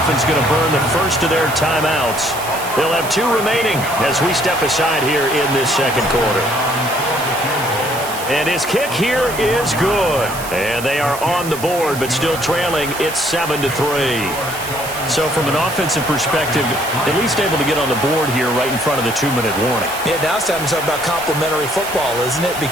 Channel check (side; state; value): right; noise; hiss, 11 dB below the sound